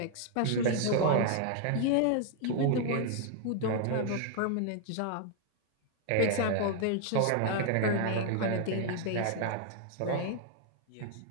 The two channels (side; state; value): both; different; correlation 0.00